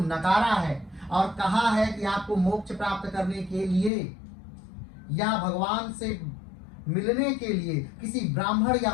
है और कहा है कि आपको मोक्ष प्राप्त करने के लिए या भगवान से मिलने के लिए किसी ब्राह्मण या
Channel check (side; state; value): right; drops out; at 3.9 s